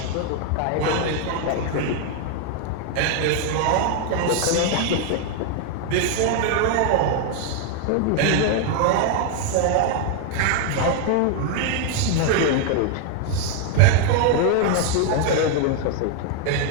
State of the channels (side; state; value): both; different; correlation 0.00